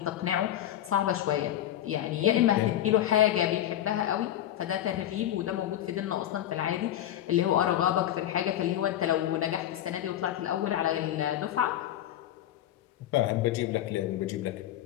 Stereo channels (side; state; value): right; quieter; 12.2 dB